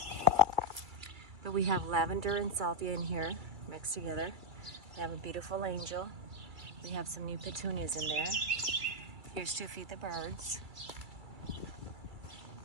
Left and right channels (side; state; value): left; late; 2.3 ms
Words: But we have lavender and salvia in here mixed together. We have a beautiful angel. We have some new petunias in there. Here's to feed the birds.